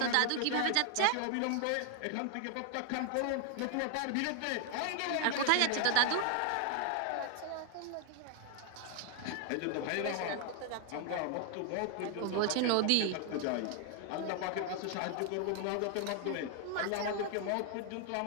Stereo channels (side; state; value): both; different; correlation 0.00